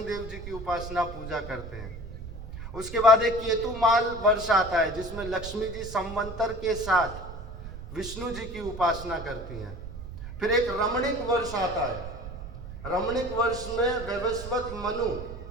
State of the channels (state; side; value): noise; right; rumble, 11 dB below the sound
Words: देव जी की उपासना पूजा करते हैं। उसके बाद एक केतुमाल वर्ष आता है, जिसमें लक्ष्मी जी संवंतर के साथ विष्णु जी की उपासना करती हैं। फिर एक रमणीक वर्ष आता है। रमणीक वर्ष में वैवस्वत मनु